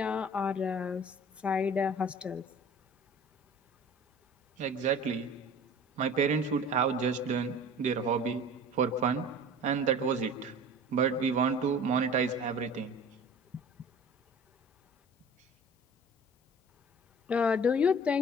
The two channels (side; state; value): both; normal; correlation 0.43